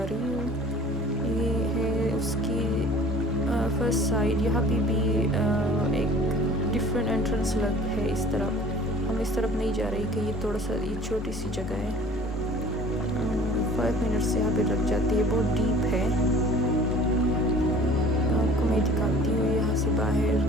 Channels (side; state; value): both; normal; correlation 0.47